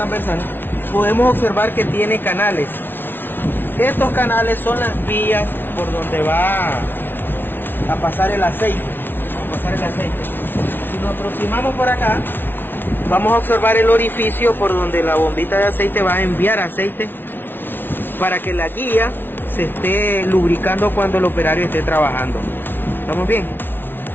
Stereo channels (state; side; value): late; right; 0.10 ms